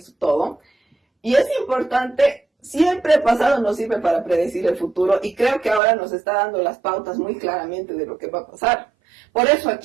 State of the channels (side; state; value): left; drops out; at 5.8 s